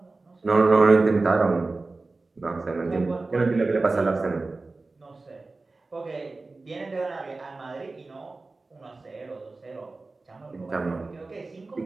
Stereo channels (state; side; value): quieter; left; 3.5 dB